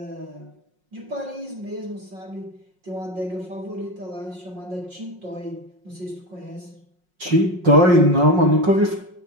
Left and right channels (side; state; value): left; late; 5.5 ms